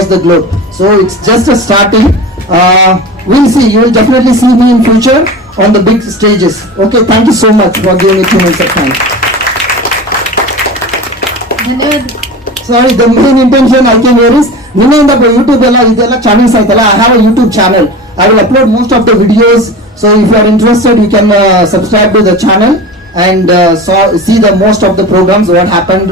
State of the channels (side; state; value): both; normal; correlation 0.31